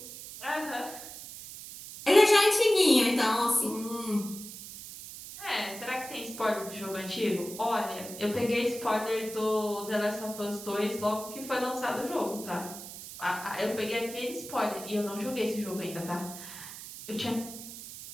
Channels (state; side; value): noise; right; hiss, 12 dB below the sound